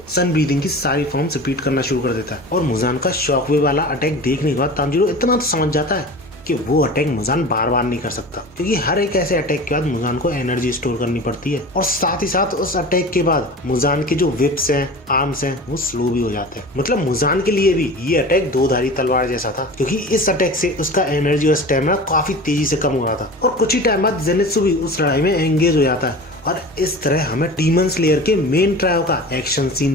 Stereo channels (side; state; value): both; normal; correlation 0.35